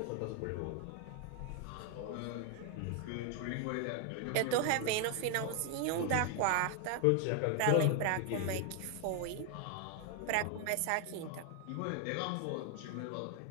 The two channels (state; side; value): different; both; correlation 0.01